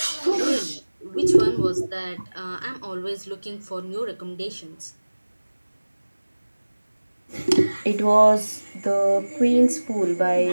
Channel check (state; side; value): inverted; both; correlation -1.00